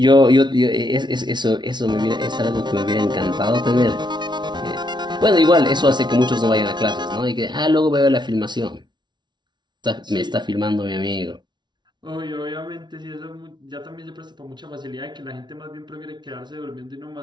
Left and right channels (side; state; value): left; late; 0.21 ms